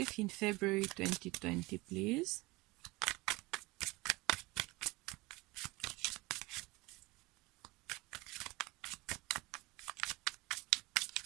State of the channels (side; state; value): left; quieter; 22.8 dB